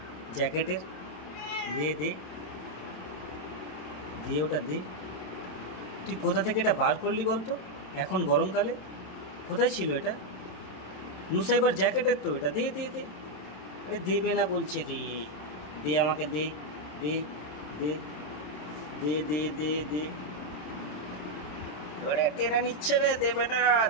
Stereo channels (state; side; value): late; right; 27 ms